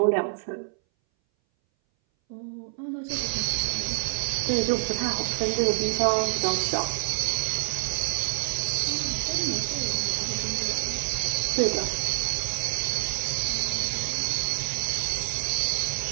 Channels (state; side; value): silent; left; 59 dB below the other